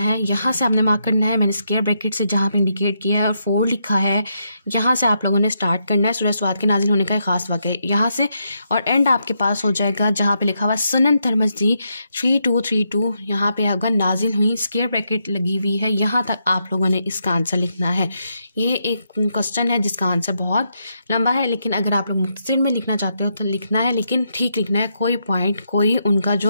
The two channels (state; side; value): inverted; both; correlation -0.81